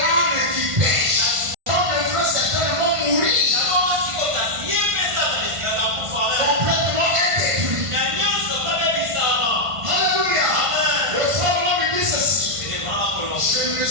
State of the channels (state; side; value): late; left; 1.5 ms